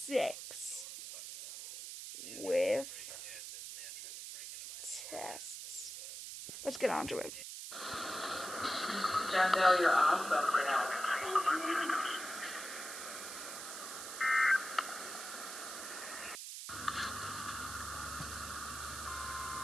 With tests. Let's get on to it. Jandel, you're awesome for now.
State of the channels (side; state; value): right; noise; hiss, 8 dB below the sound